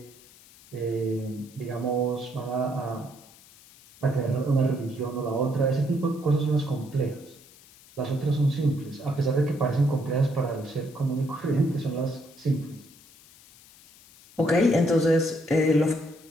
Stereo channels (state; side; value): noise; left; hiss, 24 dB below the sound